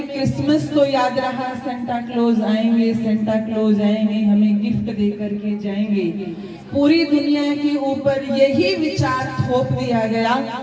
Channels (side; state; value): both; identical; correlation 1.00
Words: क्रिसमस तो याद रहा, सेंटा क्लॉज आएंगे, सेंटा क्लॉज आएंगे, हमें गिफ्ट दे करके जाएंगे। पूरी दुनिया के ऊपर यही विचार थोप दिया गया,